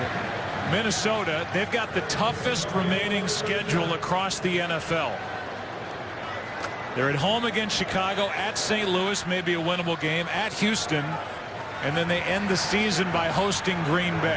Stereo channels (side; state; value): both; identical; correlation 1.00